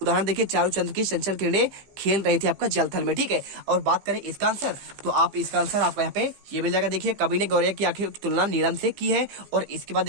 उदाहरण देखिए, चारू चंद्र की चंचल किरणें खेल रही थी आपका जलथल में। ठीक है, और बात करें इसका आंसर तो आप इसका आंसर आपको यहाँ पे ये मिल जाएगा। देखिए, कवि ने गौरव की आंखें की तुलना नीलम से की है। और इसके बाद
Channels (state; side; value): late; left; 15 ms